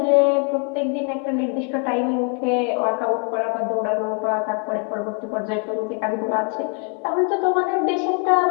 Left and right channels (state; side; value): quieter; right; 37.1 dB